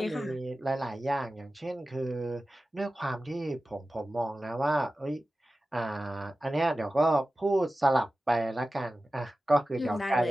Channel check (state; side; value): normal; both; correlation 0.95